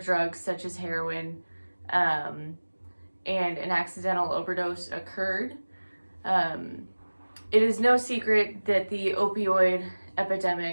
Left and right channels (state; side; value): inverted; both; correlation -1.00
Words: drugs such as heroin um, and an accidental overdose occurred? Um, it is no secret that the opioid